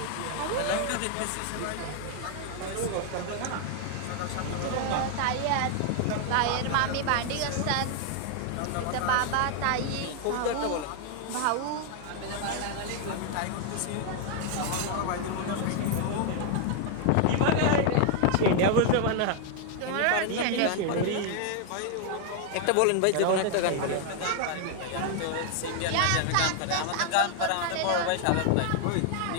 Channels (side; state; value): both; different; correlation 0.00